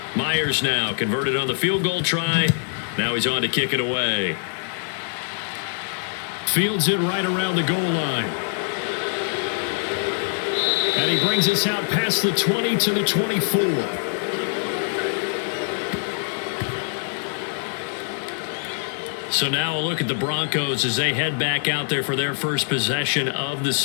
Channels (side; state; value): right; silent; digital silence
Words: Myers now converted on the field goal try. Now he's on to kick it away. Fields it right around the goal line. And he brings us out past the 20 to the 24. So now a look at the Broncos as they head back out there for their first possession of the